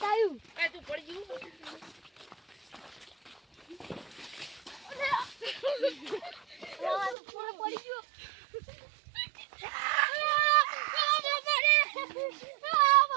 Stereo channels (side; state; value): left; drops out; at 7.2 s